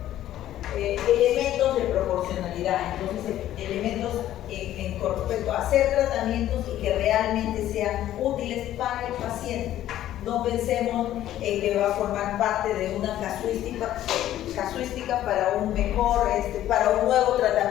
Entonces, elementos con respecto a hacer tratamientos y que realmente sean útiles para el paciente. No pensemos en que va a formar parte de una casuística para un mejor, para un nuevo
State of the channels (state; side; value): quieter; right; 12.8 dB